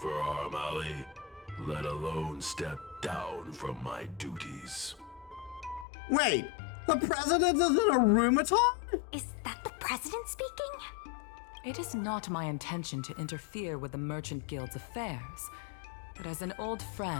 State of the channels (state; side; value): drops out; right; at 5.9 s